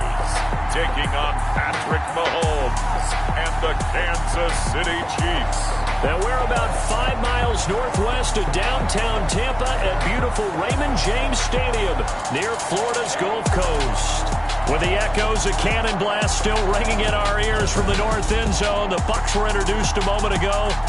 taking on Patrick Mahomes and the Kansas City Chiefs. Now we're about 5 miles northwest of downtown Tampa at beautiful Raymond James Stadium near Florida's Gulf Coast. With the echoes of cannon blast still ringing in our ears from the north end zone, the Bucs were introduced a moment ago,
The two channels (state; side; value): identical; both; correlation 1.00